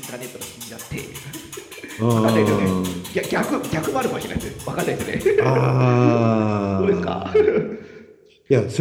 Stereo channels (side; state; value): both; identical; correlation 1.00